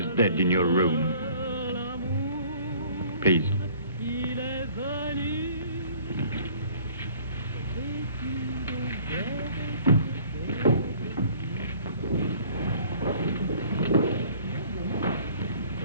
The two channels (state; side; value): inverted; both; correlation -0.53